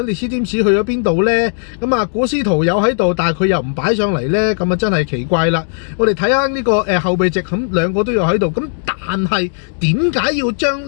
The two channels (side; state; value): right; silent; 69 dB below the other